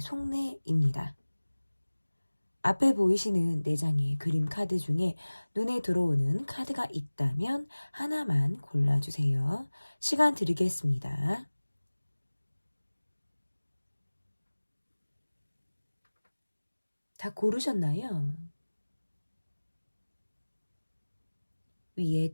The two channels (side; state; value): both; inverted; correlation -1.00